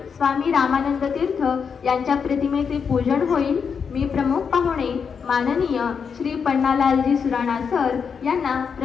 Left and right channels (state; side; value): quieter; right; 6.3 dB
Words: स्वामी रामानंद तीर्थ यांच्या प्रतिमेचे पूजन होईल. मी प्रमुख पाहुणे माननीय श्री पन्नालालजी सुराणा सर यांना